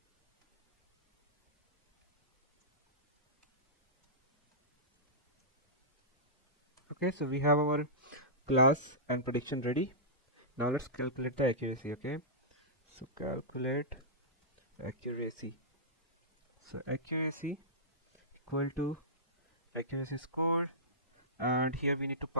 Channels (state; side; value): normal; both; correlation -0.17